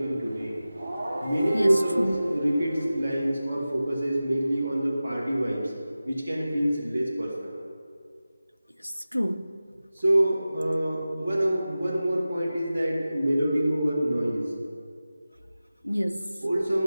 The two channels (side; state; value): both; inverted; correlation -0.96